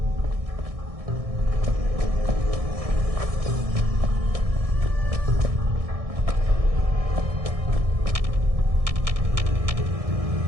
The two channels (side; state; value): left; late; 1.6 ms